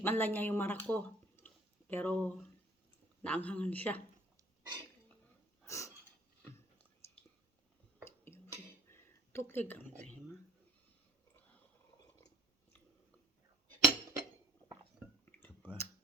lang niya yung marak ko. Pero, naanghangan siya. Tuklig ang tema. כפה.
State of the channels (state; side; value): normal; both; correlation 0.52